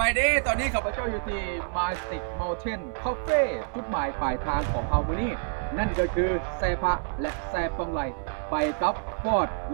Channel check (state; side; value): silent; left; digital silence